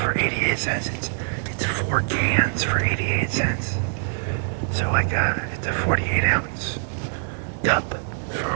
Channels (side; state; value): left; silent; digital silence